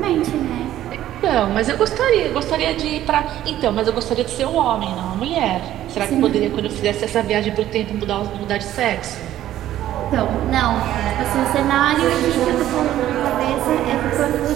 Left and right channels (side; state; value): left; quieter; 12.8 dB